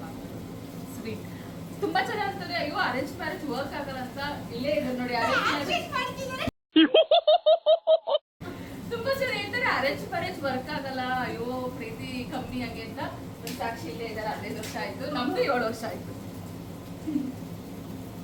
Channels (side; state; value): both; identical; correlation 1.00